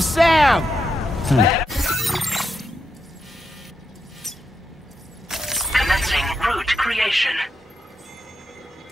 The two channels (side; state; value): both; normal; correlation 0.84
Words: Sam! Commencing route creation.